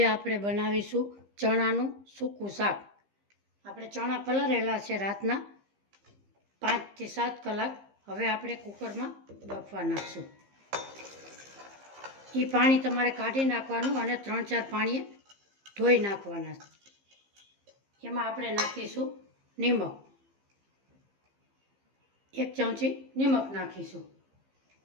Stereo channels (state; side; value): late; left; 15 ms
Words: આપણે બનાવીશું ચણાનું સૂકું શાક। આપણે ચણા પલાળેલા છે રાતના 5 થી 7 કલાક। હવે આપણે કુકરમાં બાફવા નાખશું। એ પાણી તમારે કાઢી નાખવાનું અને 3-4 પાણીએ ધોઈ નાખવાના। એમાં આપણે નાખીશું નિમક, 1 ચમચી નિમક નાખીશું